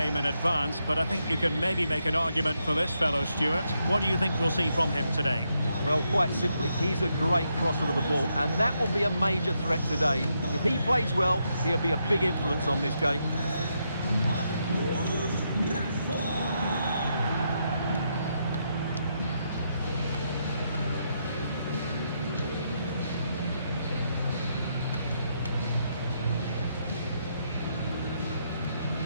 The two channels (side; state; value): both; inverted; correlation -0.80